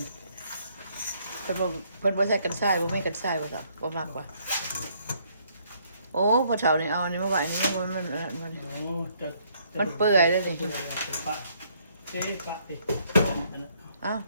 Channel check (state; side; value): inverted; both; correlation -0.67